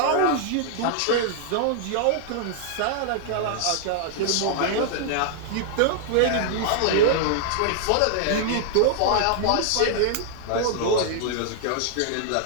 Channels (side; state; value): both; different; correlation -0.01